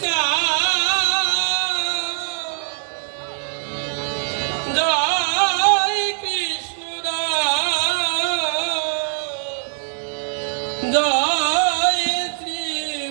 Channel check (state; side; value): silent; left; digital silence